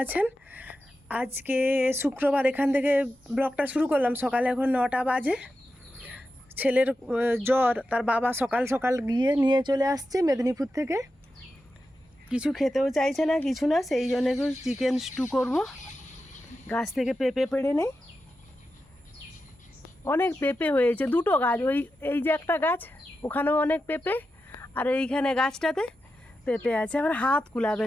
আছেন। আজকে শুক্রবার, এখান থেকে ব্লগটা শুরু করলাম। সকালে এখন 9টা বাজে। ছেলের জ্বর, তার বাবা সকাল সকাল গিয়ে নিয়ে চলে আসছে মেদিনীপুর থেকে। কিছু খেতেও চাইছে না, কিছু না, সেই জন্য একটু চিকেন স্টু করব। গাছ থেকে পেঁপে পেড়ে নেই, অনেক পেঁপে হয়েছে, দুটো গাছ, এই যে একটা গাছ, ওখানেও অনেক পেঁপে, আর এইখানে গাছটাতে পেঁপে আছে। আমার হাত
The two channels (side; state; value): both; normal; correlation 0.90